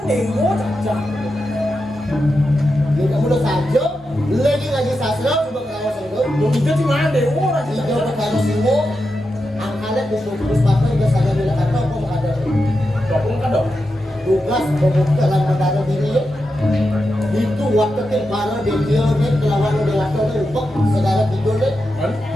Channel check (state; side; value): normal; both; correlation 0.88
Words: cacak. Kita udah saja, lagi sastra coba kalau itu. Lo itu di mana dewo lagi Kita cacak. berkali semua, angkanya bus pakai udah sadar bila kata apa mau ada. Dokong kan dong. Tugas membuka dalam mendadak ini. Itu waktu tempara dia ni kelawan dia waktu tu ubah saudara tidur ni.